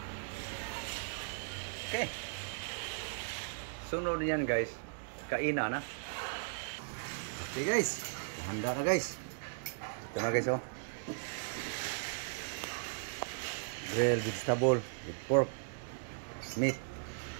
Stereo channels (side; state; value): left; silent; digital silence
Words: Okay. Sunod yan guys. Kainan na. Okay guys. Handa na guys. Ito na guys oh. Grilled vegetable with pork meat.